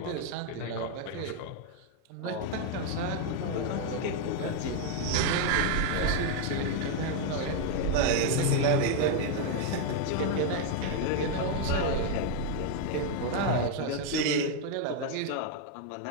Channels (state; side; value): different; both; correlation 0.00